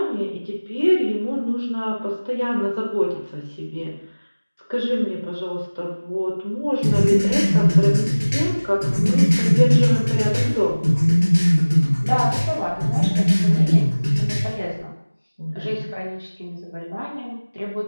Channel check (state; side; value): inverted; both; correlation -1.00